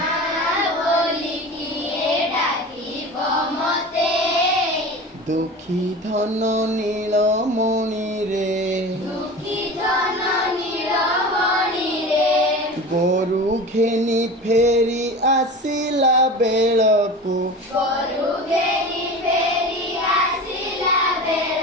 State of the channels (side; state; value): both; normal; correlation 0.33